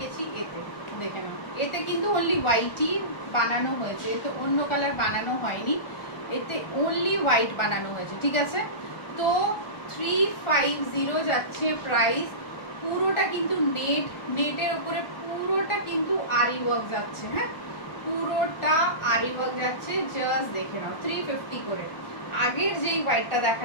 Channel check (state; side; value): late; right; 1.4 ms